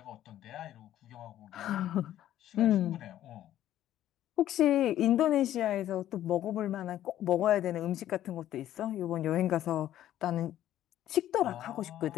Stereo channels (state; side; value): quieter; right; 12.4 dB